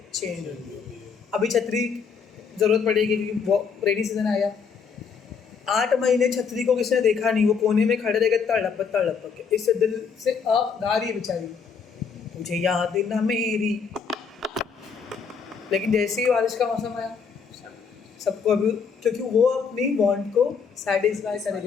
चेंज होती है। अभी छतरी ज़रूरत पड़ेगी क्योंकि वो रेनी सीजन आया, 8 महीने छतरी को किसी ने देखा नहीं, वो कोने में खड़े रह गए तड़प के, इससे दिल से गा रही है बेचारी, मुझे याद ना मेरी। लेकिन जैसे ही बारिश का मौसम आया, सबको अभी, क्योंकि वो अपनी वांट को सेटिस्फाई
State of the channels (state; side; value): quieter; right; 6.0 dB